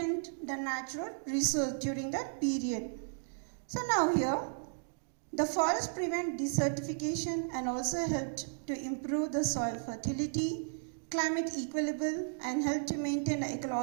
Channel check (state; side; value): silent; left; digital silence